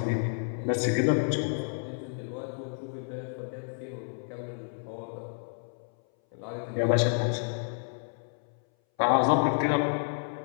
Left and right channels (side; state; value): right; silent; 58 dB below the other